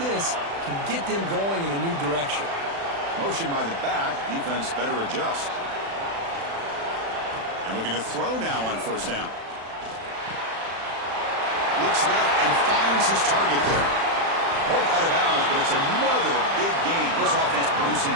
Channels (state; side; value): late; left; 36 ms